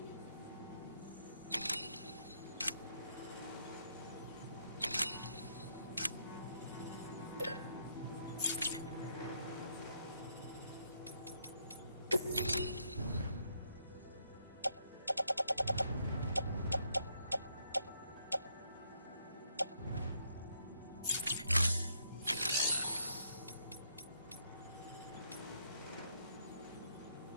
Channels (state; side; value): inverted; both; correlation -0.75